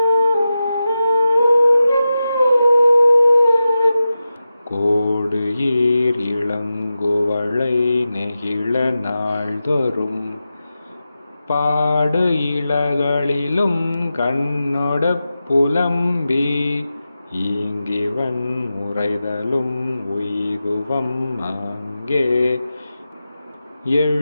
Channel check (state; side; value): inverted; both; correlation -0.92